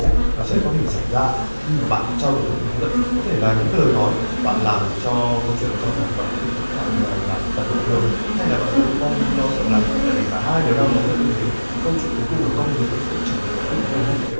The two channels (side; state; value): both; inverted; correlation -1.00